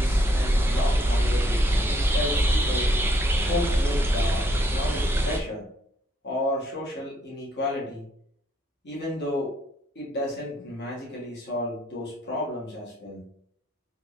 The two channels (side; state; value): both; normal; correlation 0.70